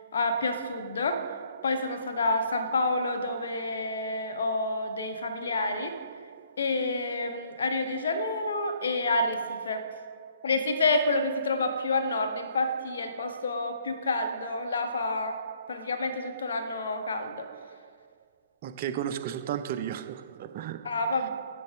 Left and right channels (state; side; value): inverted; both; correlation -0.63